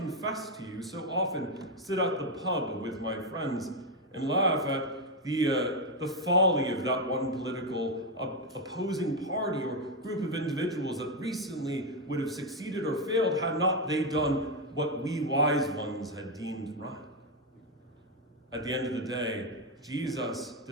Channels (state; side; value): normal; both; correlation 0.06